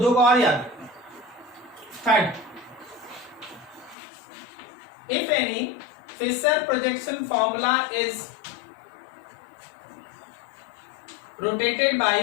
को और याद रखना। Third, if any Fischer projection formula is rotated by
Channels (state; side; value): drops out; right; at 4.0 s